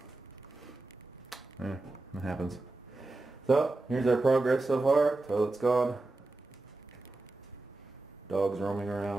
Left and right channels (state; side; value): quieter; left; 3.1 dB